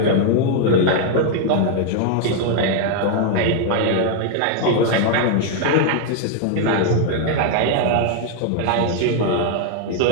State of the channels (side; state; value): both; different; correlation 0.00